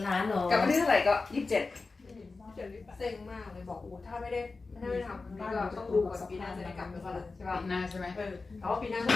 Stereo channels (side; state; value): right; quieter; 3.9 dB